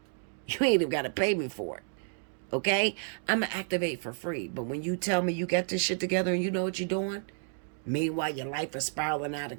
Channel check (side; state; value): left; silent; 57 dB below the other